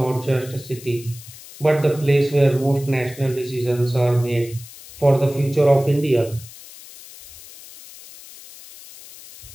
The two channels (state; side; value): noise; left; hiss, 18 dB below the sound